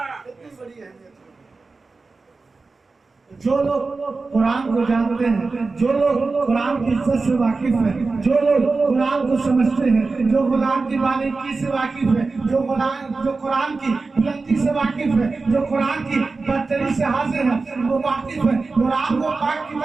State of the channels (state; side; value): quieter; left; 3.9 dB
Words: کتنی بڑی اہمیت۔ جو لوگ قرآن کو جانتے ہیں، جو لوگ قرآن کی عزت سے واقف ہیں، جو لوگ قرآن کو سمجھتے ہیں، جو قرآن کی باریکی سے واقف ہے، جو قرآن کی بلندی سے واقف ہے، جو قرآن کی برتری سے حاضر ہے، وہ واقف ہے قرآن وہ پاک